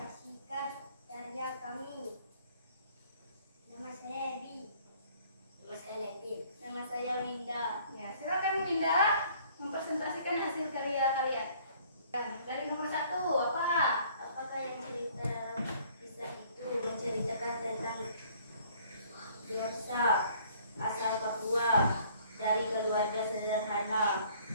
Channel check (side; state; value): both; inverted; correlation -0.58